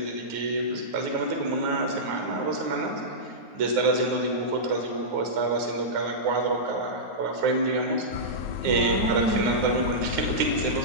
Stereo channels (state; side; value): late; left; 9.4 ms